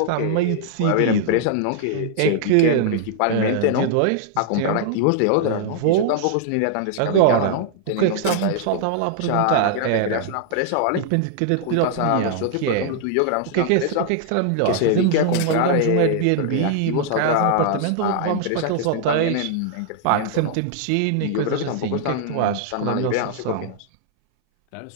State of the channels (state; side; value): different; both; correlation -0.01